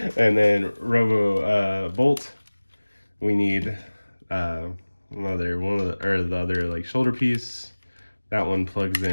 And then Robo Bolt. We need the other like shoulder piece. That one plugs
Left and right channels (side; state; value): both; inverted; correlation -1.00